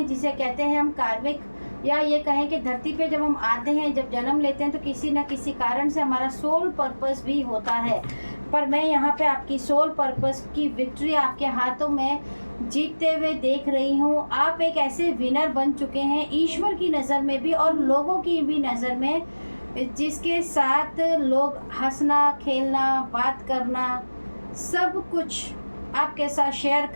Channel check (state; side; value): inverted; both; correlation -1.00